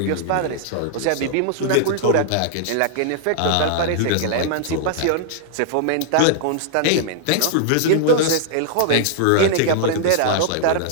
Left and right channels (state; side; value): different; both; correlation -0.01